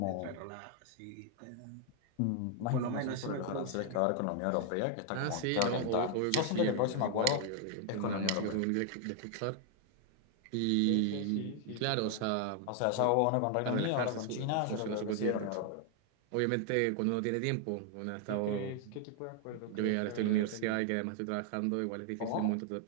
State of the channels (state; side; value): different; both; correlation 0.00